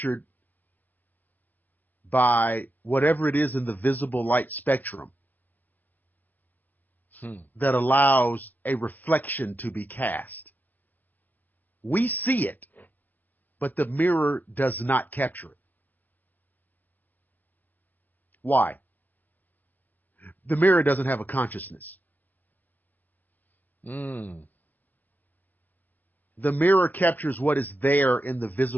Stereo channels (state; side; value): late; right; 0.083 ms